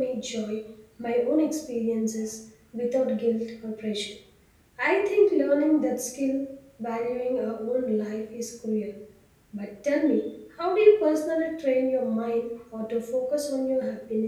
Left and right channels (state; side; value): identical; both; correlation 1.00